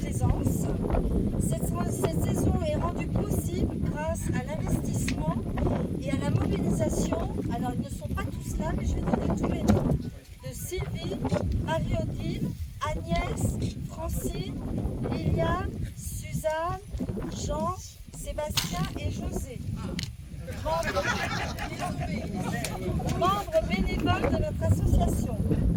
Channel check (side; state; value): both; identical; correlation 1.00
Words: Cette saison est rendue possible grâce à l'investissement et à la mobilisation. Alors ils ne sont pas tous là, mais je vais donner tous les noms. De Sylvie, Marie-Odile, Agnès, Francine, Liliane, Suzanne, Jean, Sébastien et José. Membres bénévoles de notre association.